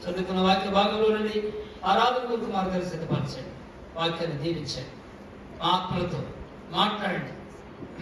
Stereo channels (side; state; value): both; identical; correlation 1.00